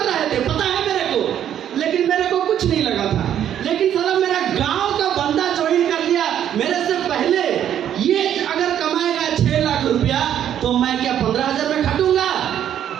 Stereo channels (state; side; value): quieter; left; 10.2 dB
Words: रहे थे, पता है मेरे को, लेकिन मेरे को कुछ नहीं लगा था। लेकिन साला मेरा गांव का बंदा ज्वाइन कर लिया मेरे से पहले। ये अगर कमाएगा 6 लाख रुपया तो मैं क्या 15,000 में खटूंगा?